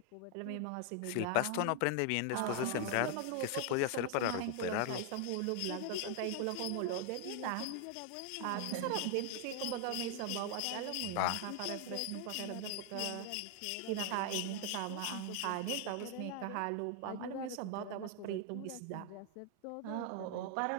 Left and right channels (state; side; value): different; both; correlation 0.00